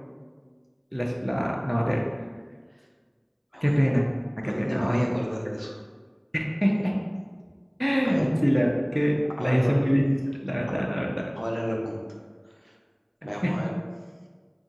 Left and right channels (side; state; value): both; identical; correlation 1.00